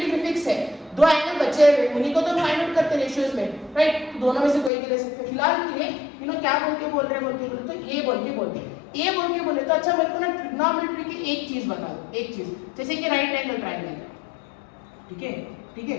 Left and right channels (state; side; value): drops out; right; at 4.7 s